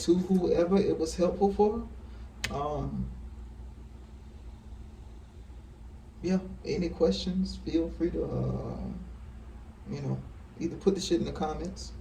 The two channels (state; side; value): identical; both; correlation 1.00